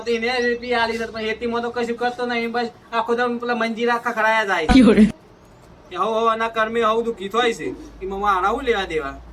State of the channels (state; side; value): identical; both; correlation 1.00